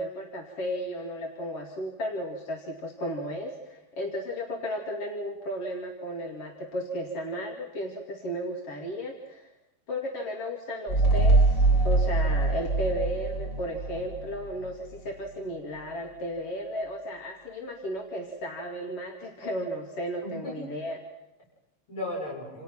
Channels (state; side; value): late; right; 4.0 ms